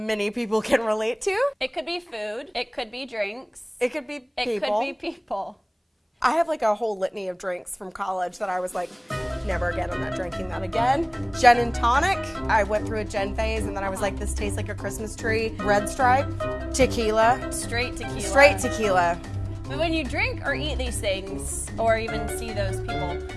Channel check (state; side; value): identical; both; correlation 1.00